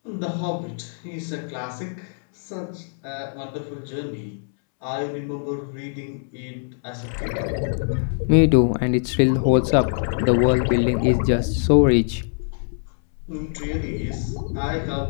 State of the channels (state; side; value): silent; right; 63 dB below the other